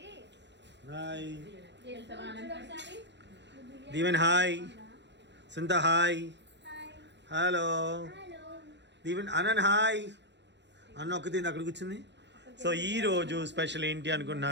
hi Deeven. Hi Suntha. Hi hello Deeven. Anant hi. అన్న ఒక్కటి అక్కడ కూర్చుంది. సో ఈరోజు స్పెషల్ ఏంటి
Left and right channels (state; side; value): late; left; 0.51 ms